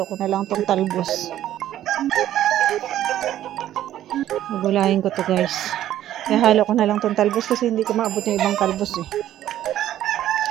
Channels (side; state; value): left; quieter; 12.4 dB